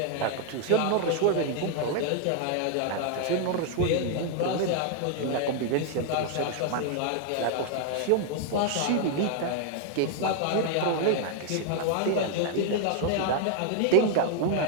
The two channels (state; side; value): different; both; correlation 0.00